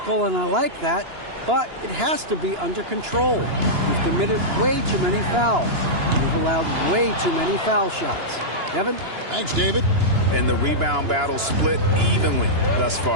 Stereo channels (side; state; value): left; late; 2.9 ms